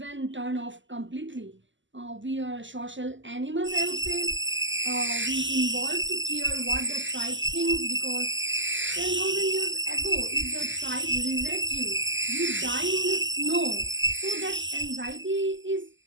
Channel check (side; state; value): left; late; 0.54 ms